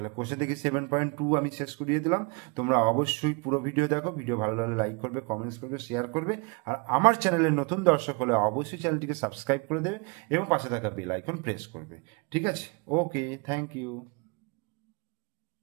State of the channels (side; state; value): left; quieter; 31.4 dB